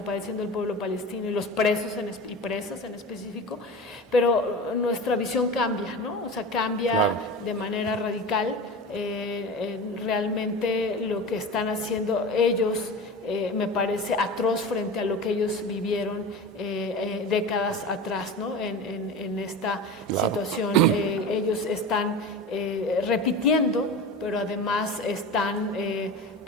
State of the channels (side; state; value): both; normal; correlation 0.30